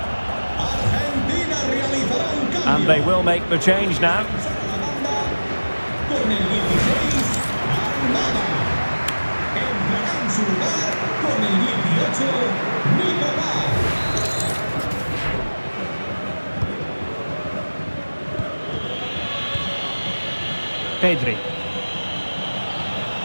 And they will make the change now. Pedri.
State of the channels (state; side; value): inverted; both; correlation -1.00